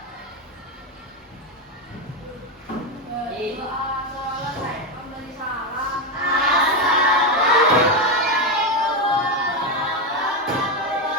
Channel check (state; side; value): normal; both; correlation 0.09